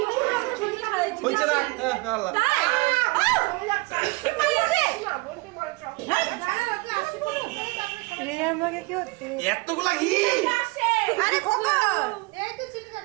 ছবি খাইছি হইছে না আল্লাহ তাই চলে যাচ্ছে বোনকে বলে চল রে আমাকে কি হচ্ছে এতগুলা ঘি আরে খোকা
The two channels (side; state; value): left; quieter; 25.4 dB